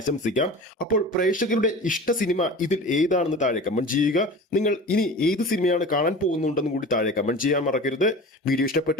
അപ്പോൾ പ്രേക്ഷകരുടെ ഇഷ്ട സിനിമ ഇതിൽ ഏതാണെന്ന് താഴെ കമന്റ് ചെയ്യുക. നിങ്ങൾ ഇനി ഏത് സിനിമയാണ് കാണാൻ പോകുന്നുണ്ടെന്ന് കൂടി താഴെ കമന്റ് ചെയ്യാൻ മറക്കരുത്. വീഡിയോ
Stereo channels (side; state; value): both; normal; correlation 0.36